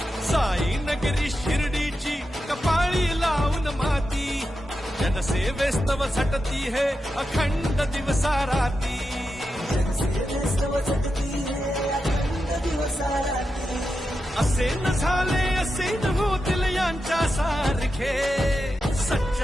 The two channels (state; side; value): normal; both; correlation 0.89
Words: साई नगरी शिर्डीची कपाळी लावून माती, जनसेवेस्तव झटती है अखंड दिवसा राती, असे न झाले असे न होतील यांच्या सारखे,